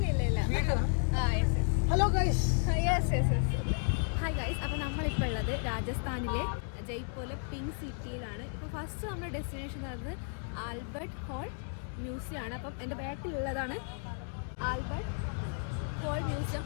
Hello guys. Hi guys. അപ്പോൾ നമ്മളിപ്പോൾ ഉള്ളത് രാജസ്ഥാനിലെ ജയ്പൂരിലെ പിങ്ക് സിറ്റിയിലാണ്. ഇപ്പോൾ ഫസ്റ്റ് നമ്മുടെ ഡെസ്റ്റിനേഷൻ പറയുന്നത് ആൽബർട്ട് ഹോൾ മ്യൂസിയം ആണ്. അപ്പം എൻ്റെ ബാക്കിലുള്ളതാണ് ആൽബർട്ട് ഹോൾ മ്യൂസിയം.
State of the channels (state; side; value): silent; right; 56 dB below the other